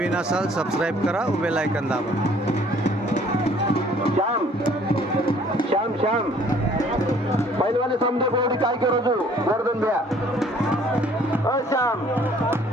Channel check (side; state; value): both; normal; correlation 0.57